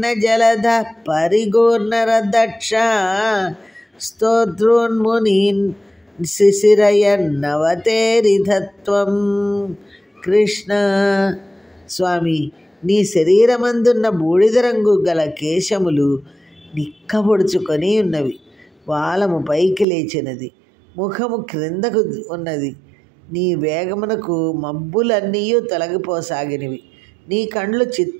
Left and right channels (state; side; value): drops out; left; at 19.9 s